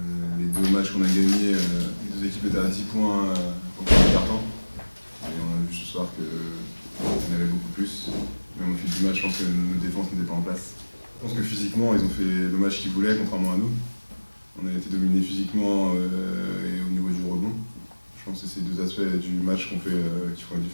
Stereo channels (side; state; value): both; inverted; correlation -1.00